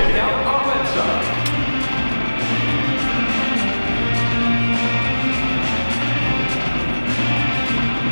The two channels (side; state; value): both; inverted; correlation -1.00